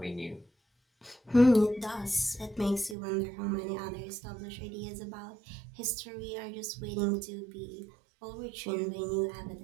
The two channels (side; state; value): left; drops out; at 3.0 s